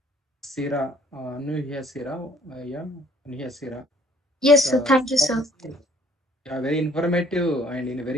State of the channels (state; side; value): normal; both; correlation 0.59